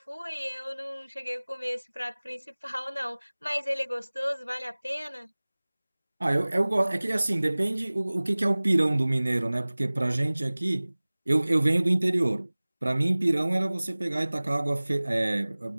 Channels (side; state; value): both; inverted; correlation -1.00